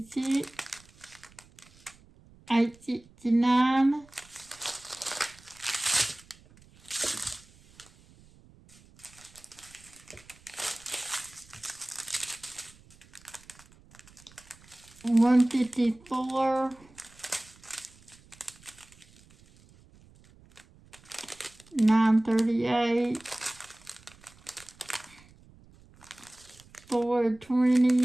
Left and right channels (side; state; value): right; noise; rumble, 26 dB below the sound